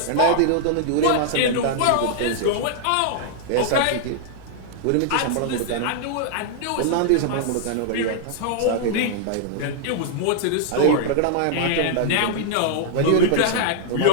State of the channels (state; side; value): different; both; correlation -0.01